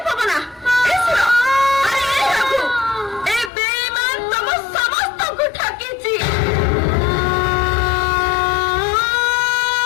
ପବନା, ଏ ସୁର, ଆରେ ଏ ରଘୁ, ଏ ବେଇମାନ ତମ ସମସ୍ତଙ୍କୁ ଠକିଛି।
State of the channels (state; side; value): drops out; right; at 3.5 s